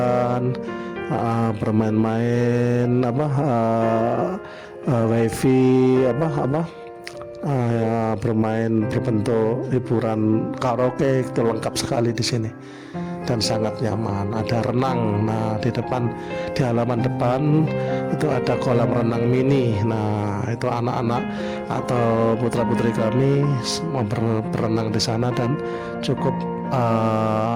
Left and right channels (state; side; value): identical; both; correlation 1.00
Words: bermain-main, wifi, ya, bermain berbentuk hiburan karaoke, itu lengkap sekali di sini dan sangat nyaman. Ada renang, nah di halaman depan itu ada kolam renang mini. Nah itu anak-anak atau putra-putri kami mau berenang di sana dan cukup